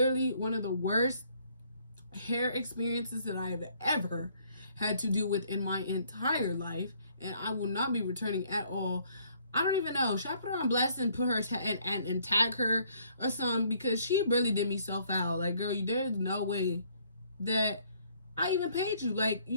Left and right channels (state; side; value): inverted; both; correlation -0.64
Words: one of the worst hair experiences that I have ever had to deal with in my entire life, and I will not be returning at all. I don't even know. Should I put her on blast and put her and tag her or something? Because she really did me so foul. Like, girl, there's no way that I even paid you. Like,